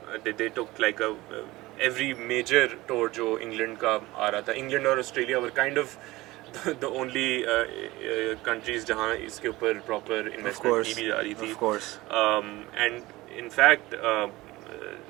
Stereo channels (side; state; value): left; quieter; 19.4 dB